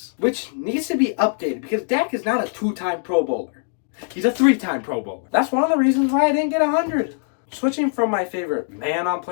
which needs to be updated because Dak is not a 2-time Pro Bowler. He's a 3-time Pro Bowler. That's one of the reasons why I didn't get 100. Switching from my favorite man on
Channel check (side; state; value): right; silent; 62 dB below the other